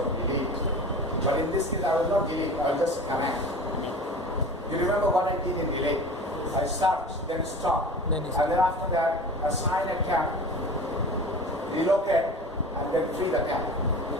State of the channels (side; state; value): both; normal; correlation 0.36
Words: delete. But in this case, I will not delete, I will just command. You remember what I did in delete? I search, then stop. And then after that, assign a camp, relocate, and then free the camp.